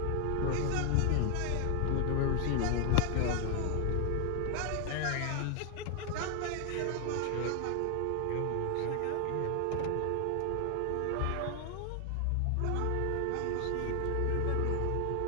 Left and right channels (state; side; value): different; both; correlation 0.00